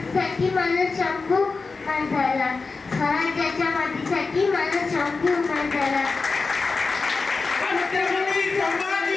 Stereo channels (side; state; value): right; quieter; 4.2 dB